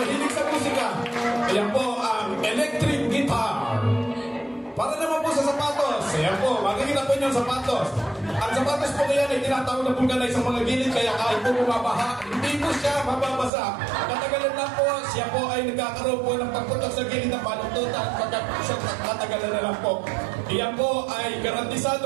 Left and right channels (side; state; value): left; drops out; at 13.5 s